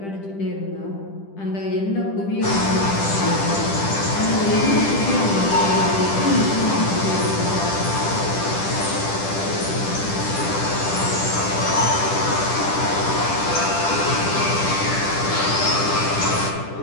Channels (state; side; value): late; right; 10 ms